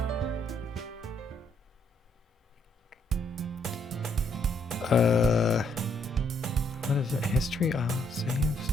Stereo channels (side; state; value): both; normal; correlation 0.71